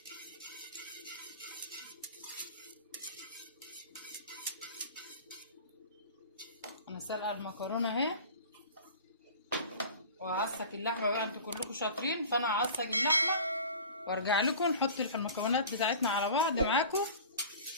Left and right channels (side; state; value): both; inverted; correlation -0.39